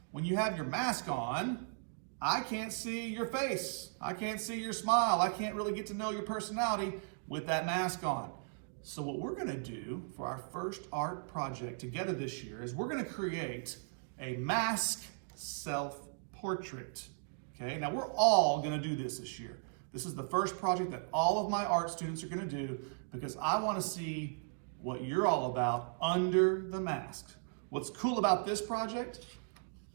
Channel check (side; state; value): left; silent; digital silence